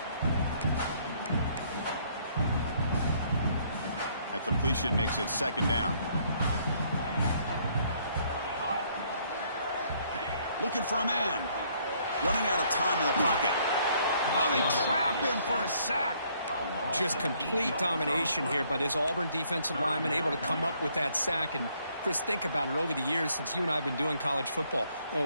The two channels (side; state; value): both; inverted; correlation -0.66